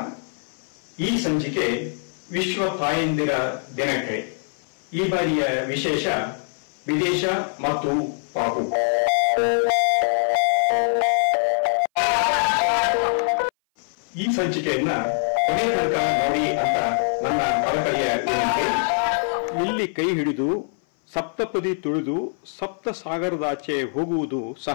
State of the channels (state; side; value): silent; right; 59 dB below the other